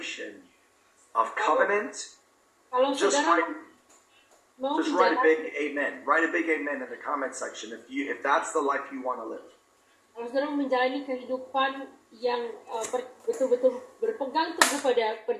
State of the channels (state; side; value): identical; both; correlation 1.00